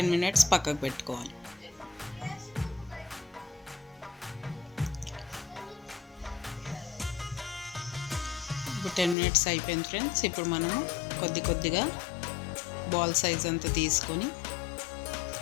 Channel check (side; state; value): right; drops out; at 9.2 s